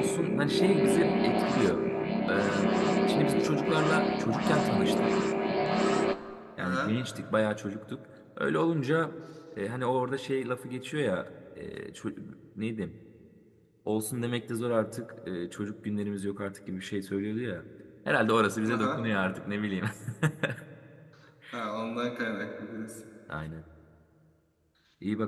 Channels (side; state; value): both; identical; correlation 1.00